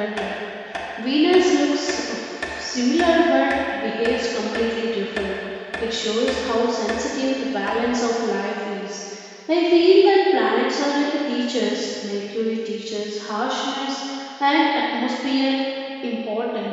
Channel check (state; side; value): identical; both; correlation 1.00